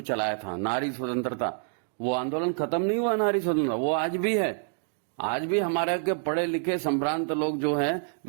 चलाया था, नारी स्वतंत्रता, वो आंदोलन खत्म नहीं हुआ। नारी स्वतंत्रता वो आज भी है। आज भी हमारे के पढ़े लिखे संभ्रांत लोग जो हैं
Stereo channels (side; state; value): left; silent; 60 dB below the other